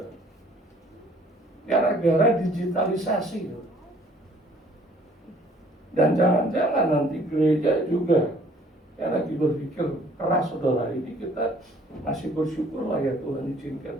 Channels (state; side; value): normal; both; correlation 0.57